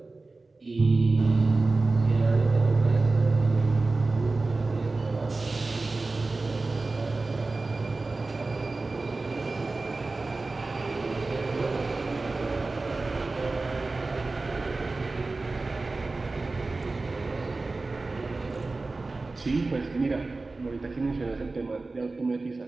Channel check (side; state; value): left; quieter; 3.5 dB